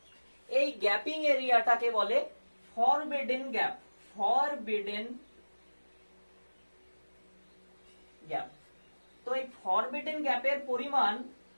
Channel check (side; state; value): both; inverted; correlation -1.00